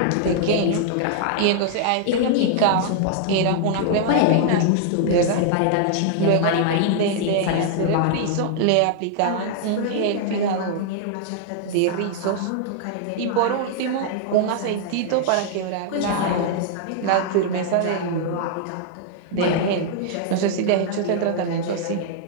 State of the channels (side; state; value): both; different; correlation -0.01